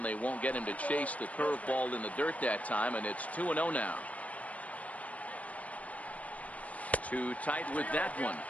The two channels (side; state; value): right; late; 0.068 ms